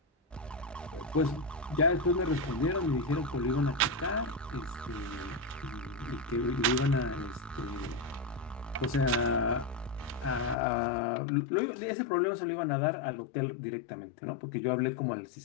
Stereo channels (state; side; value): drops out; right; at 10.6 s